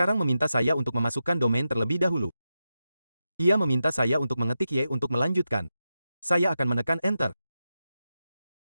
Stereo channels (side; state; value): both; inverted; correlation -0.89